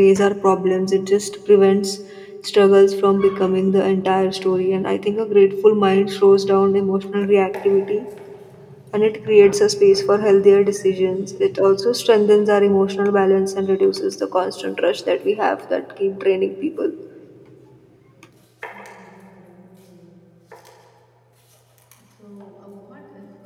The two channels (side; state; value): both; identical; correlation 1.00